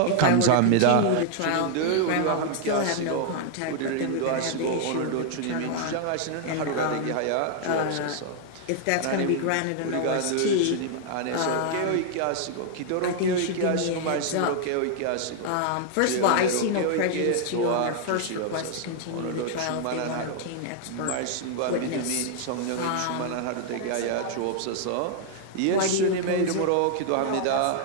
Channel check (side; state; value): both; different; correlation 0.00